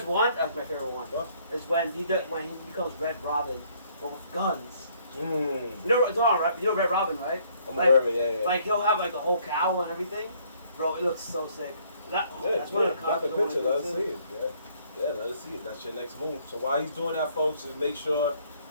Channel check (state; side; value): inverted; both; correlation -0.64